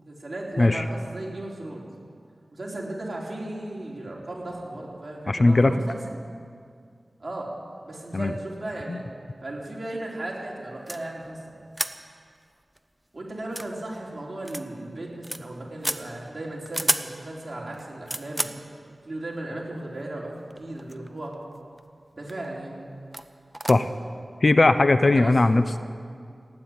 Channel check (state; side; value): normal; both; correlation 0.98